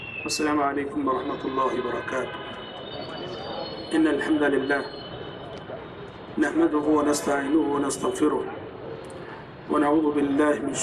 السلام عليكم ورحمة الله وبركاته. إن الحمد لله نحمده ونستعينه ونستغفره ونعوذ بالله من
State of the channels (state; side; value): identical; both; correlation 1.00